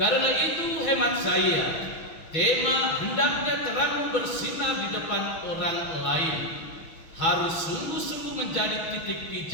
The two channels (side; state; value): right; late; 6.1 ms